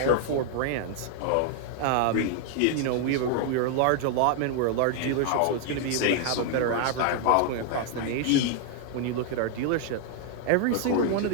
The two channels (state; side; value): different; both; correlation 0.00